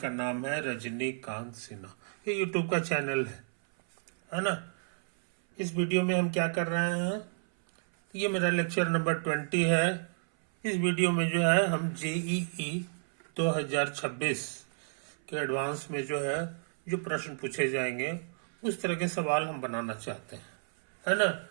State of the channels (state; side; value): silent; left; 57 dB below the other